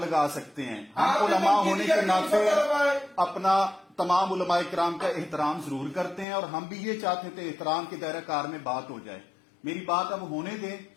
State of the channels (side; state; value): right; drops out; at 6.2 s